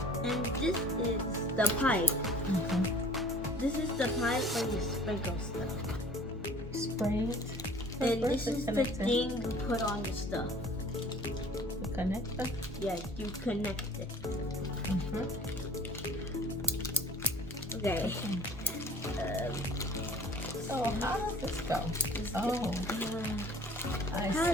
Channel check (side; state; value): both; normal; correlation 0.49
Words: And this is the pipe. Okay. This is the pipe where you sprinkle stuff. Spray it. And Where's this the is the connector? thing you put on the stuff. The connector. Yeah, you connect it. Mm-hmm. Okay. So how does this go? Oh, I How